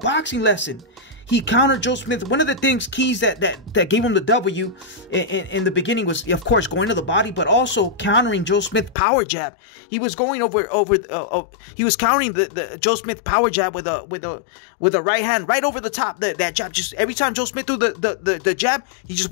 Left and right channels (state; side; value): drops out; right; at 9.0 s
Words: lesson. He countered Joe Smith. One of the keys that gave him the W in the beginning was, of course, going to the body, but also countering Joe Smith power jab. He was going he was countering the Joe Smith power jab with a right hand right over the top. That jab, just every time Joe Smith threw the jab, he just